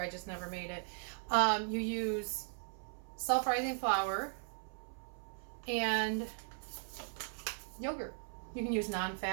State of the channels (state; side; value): silent; left; 52 dB below the other